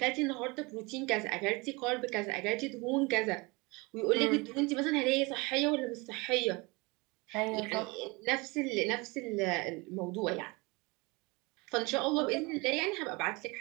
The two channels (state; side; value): quieter; left; 26.0 dB